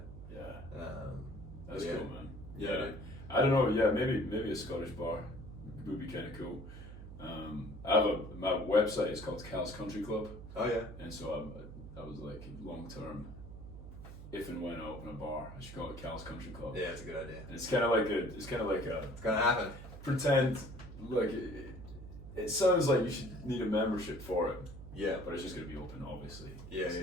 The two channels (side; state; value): right; noise; hum, 13 dB below the sound